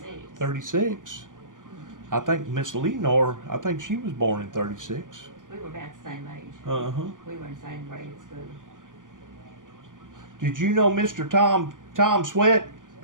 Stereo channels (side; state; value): left; late; 0.88 ms